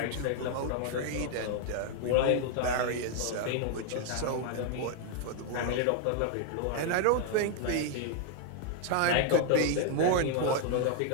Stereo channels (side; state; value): both; different; correlation 0.00